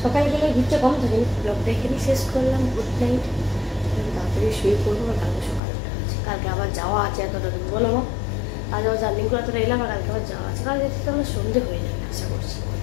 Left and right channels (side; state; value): right; drops out; at 5.6 s